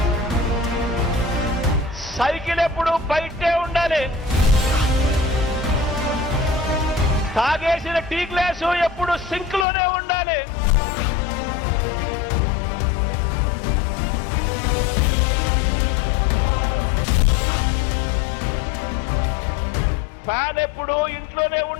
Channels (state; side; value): drops out; right; at 9.7 s